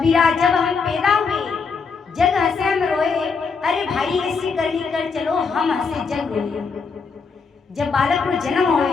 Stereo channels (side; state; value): right; quieter; 5.1 dB